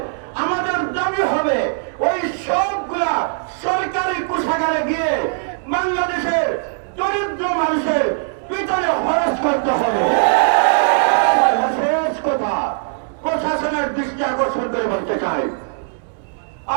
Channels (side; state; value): left; silent; digital silence